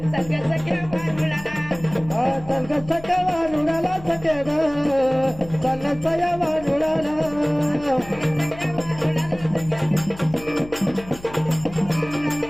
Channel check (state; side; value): noise; left; hum, 18 dB below the sound